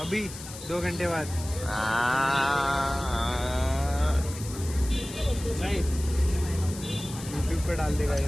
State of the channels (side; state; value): left; noise; hiss, 13 dB below the sound